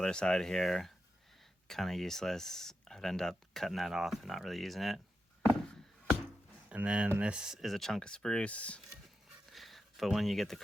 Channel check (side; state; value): both; normal; correlation 0.88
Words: side here, kind of useless. I'd end up cutting that off and not really using it. And then this is a chunk of spruce, but when you get the